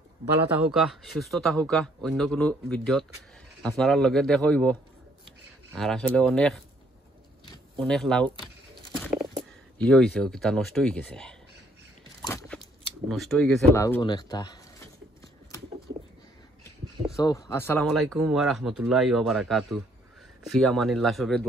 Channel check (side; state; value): both; normal; correlation 0.65